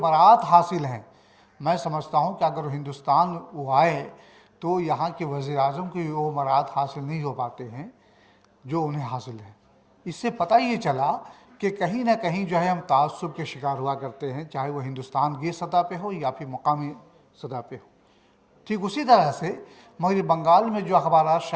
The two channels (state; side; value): identical; both; correlation 1.00